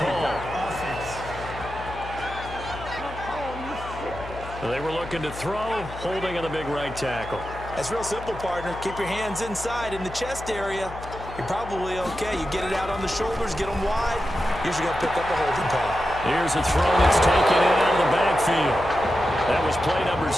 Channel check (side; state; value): left; noise; hum, 13 dB below the sound